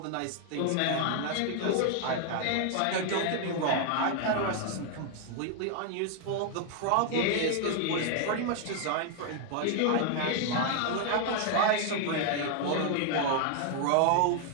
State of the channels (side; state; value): both; different; correlation 0.00